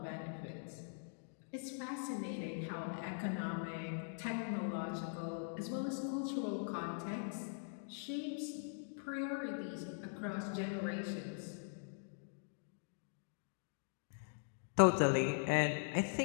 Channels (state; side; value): silent; right; digital silence